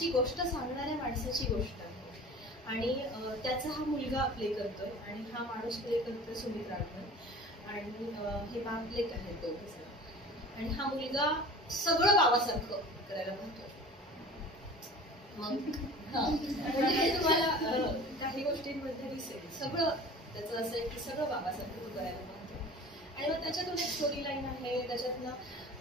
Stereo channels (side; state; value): both; normal; correlation 0.41